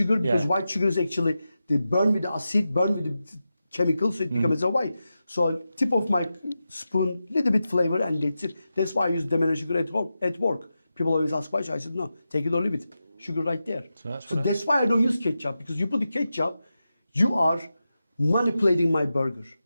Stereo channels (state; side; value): inverted; both; correlation -0.91